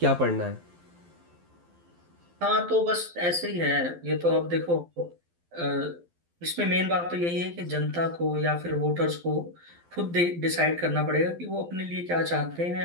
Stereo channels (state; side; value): late; left; 12 ms